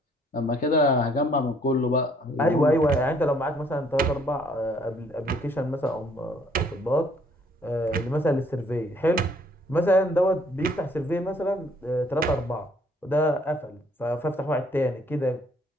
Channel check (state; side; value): normal; both; correlation 0.63